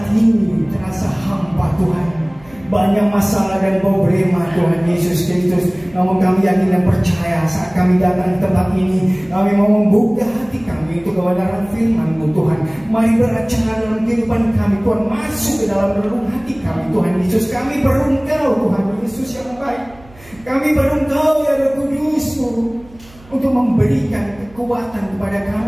ini terasa hampa Tuhan. Banyak masalah dan problema Tuhan Yesus Kristus. Namun kami yakin dan percaya saat kami datang ke tempat ini, kami mau membuka hati kami untuk kebenaran firman-Mu Tuhan. Mari beracara dalam kehidupan kami Tuhan. Masuk ke dalam relung hati kami Tuhan Yesus. Kami berengkau Tuhan Yesus yang baik. Kami berengkau ya Roh Kudus-Mu untuk memberikan kekuatan kepada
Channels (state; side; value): noise; right; hum, 24 dB below the sound